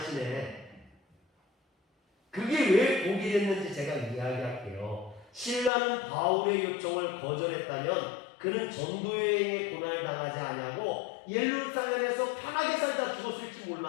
그게 왜 복이 됐는지 제가 이야기할게요. 신라는 바울의 요청을 거절했다면 그는 전도여행에 고난을 당하지 아니하고 예루살렘에서 편하게 살다 죽었을지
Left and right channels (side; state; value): right; drops out; at 5.7 s